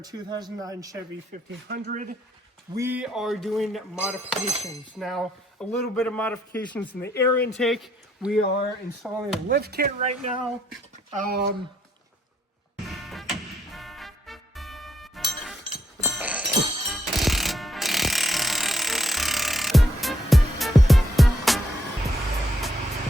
2009 Chevy 1500, we are doing modifications. Now, a little bit of modifications in the air intake. We are installing a lift kit right now.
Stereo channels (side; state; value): both; normal; correlation 0.73